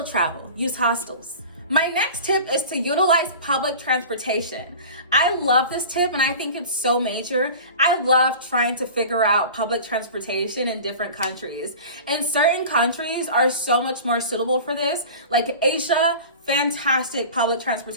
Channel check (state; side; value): inverted; both; correlation -0.37